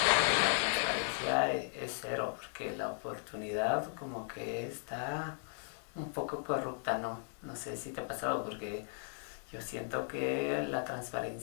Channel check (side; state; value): right; silent; digital silence